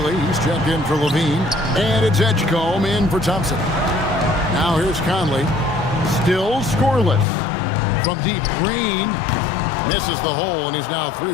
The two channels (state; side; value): drops out; right; at 7.2 s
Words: he's checked in for Levine. And it's Edgecombe in for Thompson. Now here's Conley. Still scoreless. From deep, Green misses the hole, and he's now